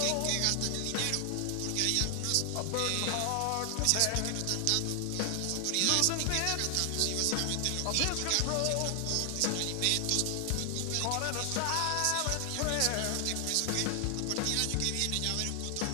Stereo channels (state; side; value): different; both; correlation 0.00